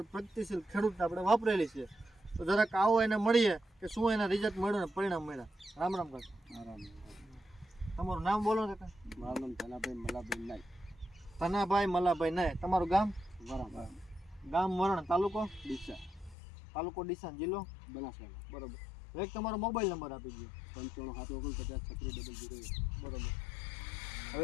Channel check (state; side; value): drops out; right; at 16.4 s